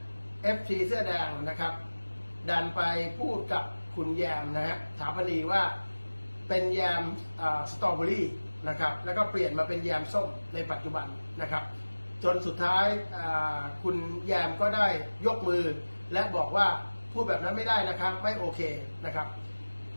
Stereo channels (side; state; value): both; inverted; correlation -1.00